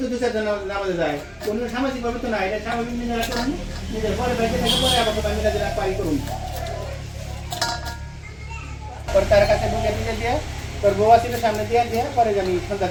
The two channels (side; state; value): both; identical; correlation 1.00